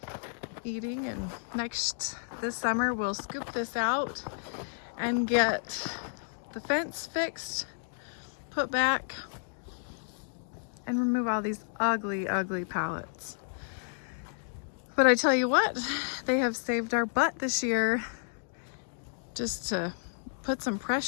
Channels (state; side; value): silent; right; digital silence